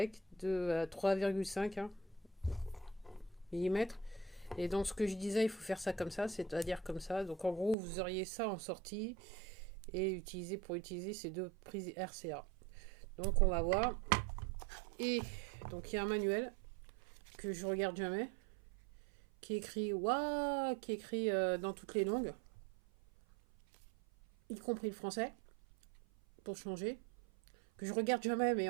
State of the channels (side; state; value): left; drops out; at 7.8 s